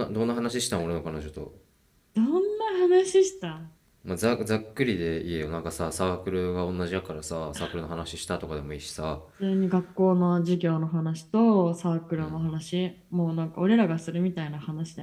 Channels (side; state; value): both; identical; correlation 1.00